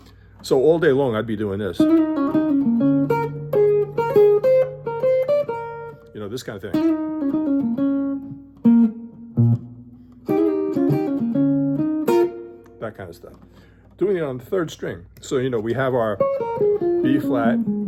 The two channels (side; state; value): both; identical; correlation 1.00